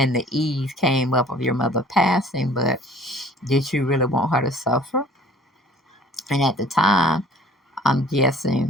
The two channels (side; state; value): both; normal; correlation 0.51